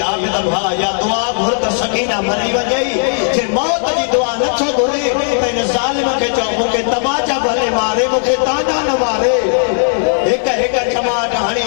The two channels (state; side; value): silent; right; 68 dB below the other